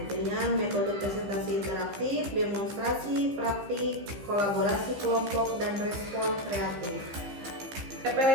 dengan metode presentasi interaktif, demonstrasi, praktik, kolaborasi kelompok, dan respon kreatif.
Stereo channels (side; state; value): left; late; 15 ms